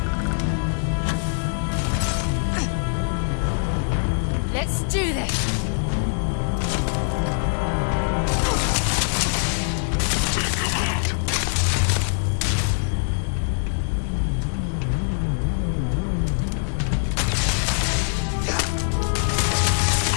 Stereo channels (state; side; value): silent; right; digital silence